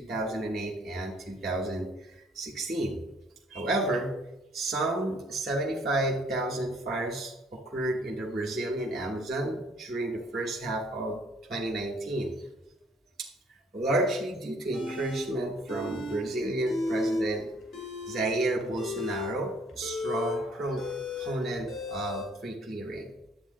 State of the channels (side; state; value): both; normal; correlation 0.60